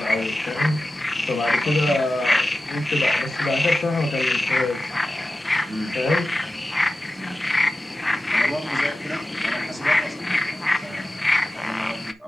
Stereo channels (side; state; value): both; normal; correlation 0.95